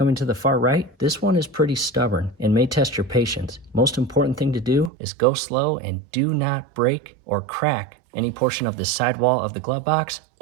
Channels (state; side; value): drops out; left; at 4.9 s